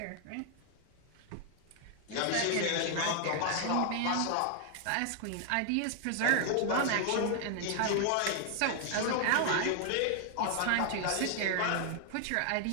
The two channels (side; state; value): both; different; correlation 0.00